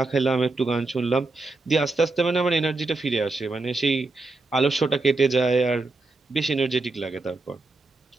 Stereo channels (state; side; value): quieter; left; 3.4 dB